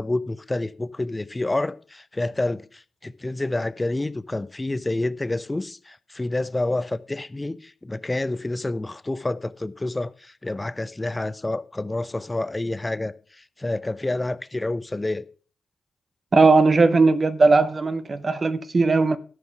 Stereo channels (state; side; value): normal; both; correlation 0.94